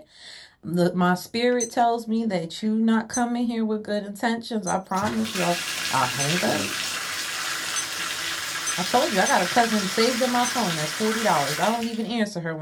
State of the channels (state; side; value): identical; both; correlation 1.00